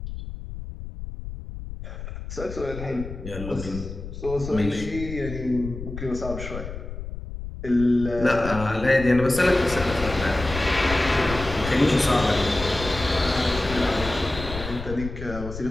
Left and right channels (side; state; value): left; noise; rumble, 9 dB below the sound